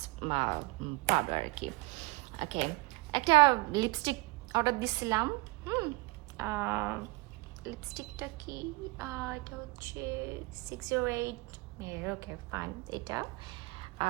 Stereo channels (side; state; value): left; quieter; 24.5 dB